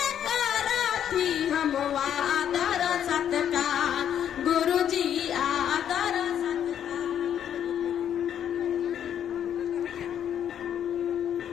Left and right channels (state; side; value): quieter; right; 9.5 dB